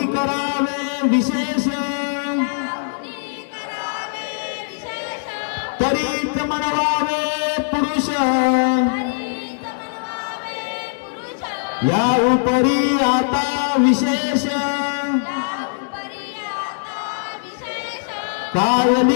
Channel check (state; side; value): silent; right; digital silence